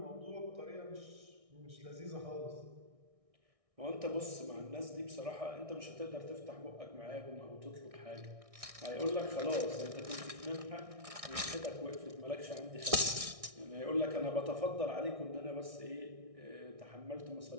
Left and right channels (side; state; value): left; late; 1.6 ms